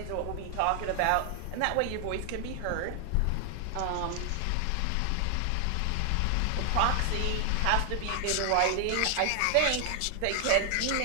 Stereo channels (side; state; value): both; different; correlation 0.00